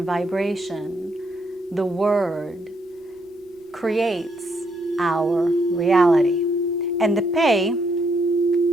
vibration, the word, creates our reality. And the Pei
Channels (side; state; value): both; normal; correlation 0.74